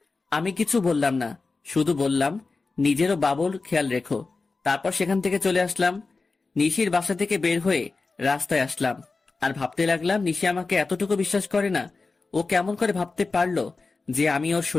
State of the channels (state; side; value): quieter; right; 4.0 dB